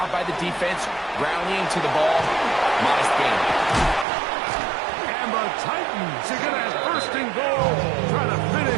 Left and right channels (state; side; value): drops out; left; at 4.0 s